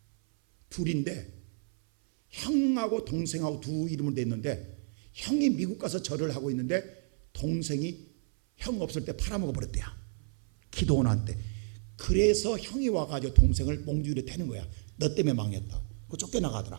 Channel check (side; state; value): left; silent; 57 dB below the other